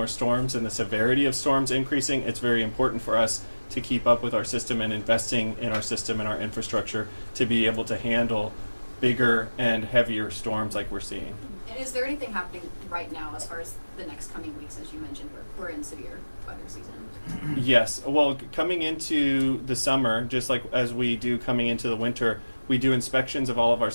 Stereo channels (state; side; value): inverted; both; correlation -1.00